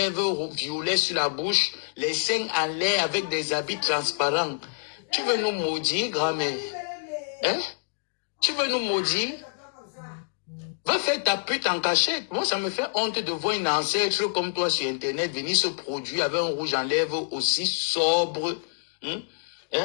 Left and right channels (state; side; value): silent; right; digital silence